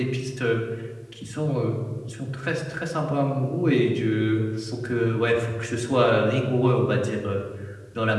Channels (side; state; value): both; identical; correlation 1.00